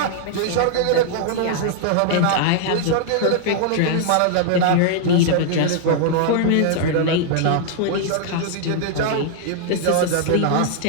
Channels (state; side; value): different; both; correlation -0.01